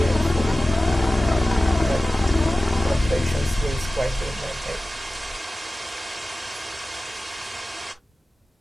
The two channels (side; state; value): both; normal; correlation 0.96